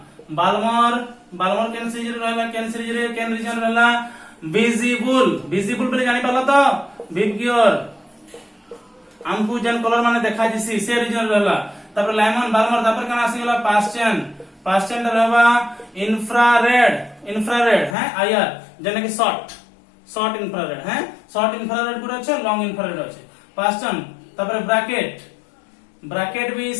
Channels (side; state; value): right; drops out; at 17.9 s